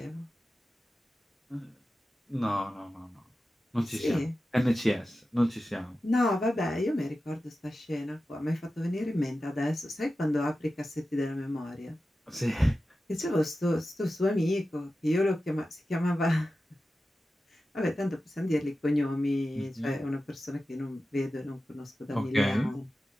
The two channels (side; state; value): both; normal; correlation 0.93